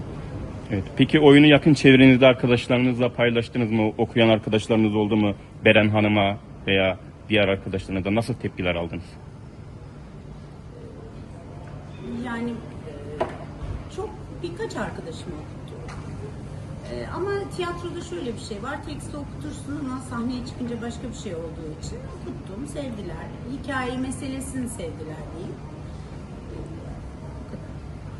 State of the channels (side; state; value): both; identical; correlation 1.00